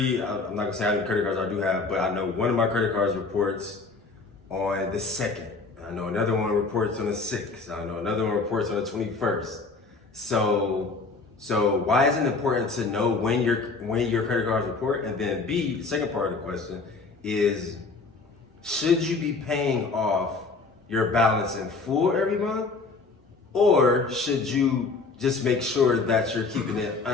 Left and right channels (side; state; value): right; quieter; 4.1 dB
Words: I'm not gonna say how many credit cards I do have, but I know one of my credit cards reports on the 2nd. I know another one reports on the 6th. I know another one reports on the 21st. So why is it important to know when your credit cards report? And then B, the second part of the question is, should you be paying off your balance in full every month? Or should you just make sure that you're keeping it